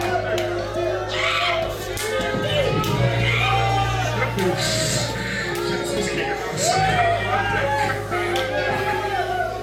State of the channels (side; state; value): both; identical; correlation 1.00